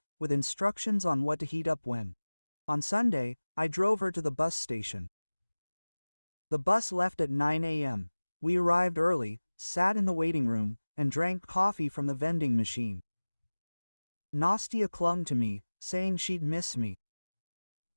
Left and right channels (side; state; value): both; inverted; correlation -1.00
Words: with instructions on what to heat up when. On Sunday, I drove her to the bus station. The bus left at 9 a.m. We arrived early, sat in the waiting room, and drank coffee from the vending machine. Nastia clung to me, saying she'd miss me.